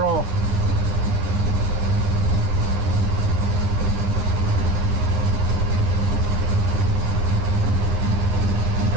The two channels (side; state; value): left; late; 9.7 ms